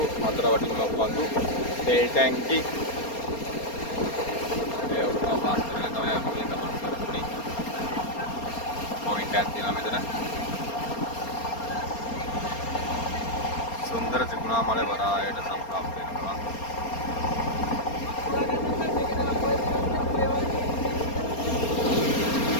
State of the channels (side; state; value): right; late; 4.3 ms